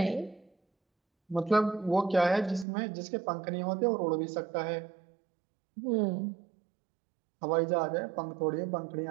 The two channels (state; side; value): drops out; left; at 2.7 s